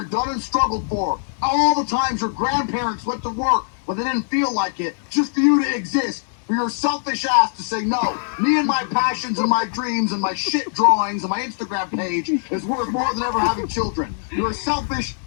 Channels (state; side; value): silent; right; digital silence